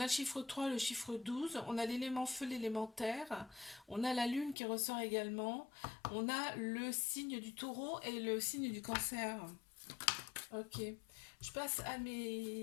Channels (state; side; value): drops out; right; at 4.5 s